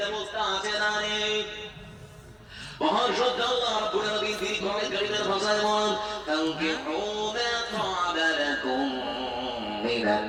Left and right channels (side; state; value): both; identical; correlation 1.00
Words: ব্যবস্থা আছে না নেই? মহান শ্রদ্ধা আল্লাহ রাব্বুল আলামিন তিনি কোরআন কারীমের ভাষায় বলেন, তানকিহু মা তা'আবা লাকুম মিনান